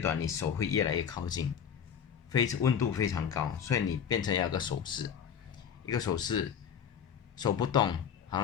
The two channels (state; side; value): quieter; right; 7.9 dB